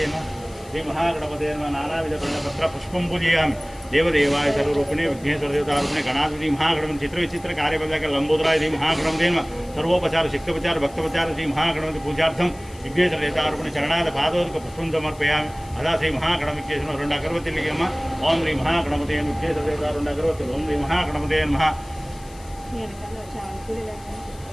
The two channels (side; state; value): left; noise; hiss, 23 dB below the sound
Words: నమః శ్రీ మహాగణపతే నమః నానావిధ పత్ర పుష్పం పూజయామి దేవదేవాయ సర్వరూపిణే విఘ్నేశ్వర దేవతారూపిణే గణాధిపతి మహాగణపతి చిత్ర విచిత్ర కార్యపదాక లంబోదరాయ శ్రీ మహాగణపతే నమః సర్వోపచార శక్తోపచార భక్తోపచార శ్రీ మహాగణపతి పూజార్థం విఘ్నేశ్వర దేవతారూపిణి చరణాద పాదోదక పుష్పం సమర్పయామి అదా శ్రీ మహాగణపతికేశ్వరం 2 అగరవత్తులు అమ్మ ఓం శ్రీ మహాగణపతే విఘ్నేశ్వర దేవత 2 అగరవత్తులు ఓం శ్రీ మహాగణపతే నమః